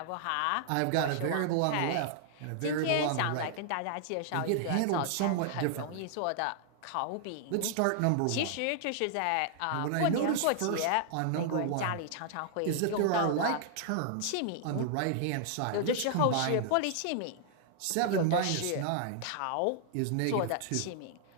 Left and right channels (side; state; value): both; different; correlation -0.01